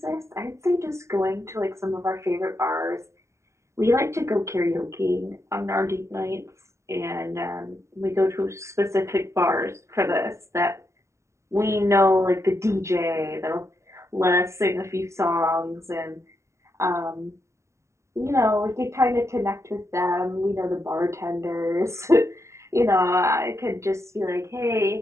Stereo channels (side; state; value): left; late; 0.14 ms